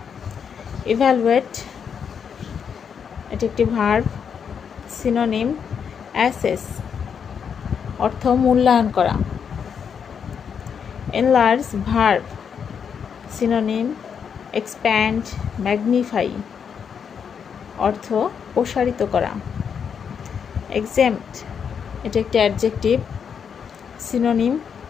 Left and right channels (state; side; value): quieter; right; 7.1 dB